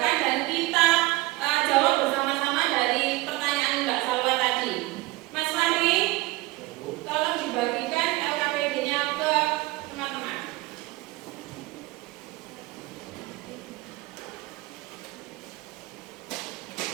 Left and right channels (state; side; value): quieter; left; 19.9 dB